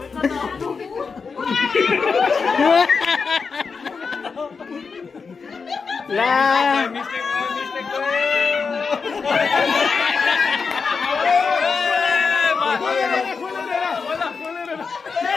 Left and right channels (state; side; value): quieter; right; 5.1 dB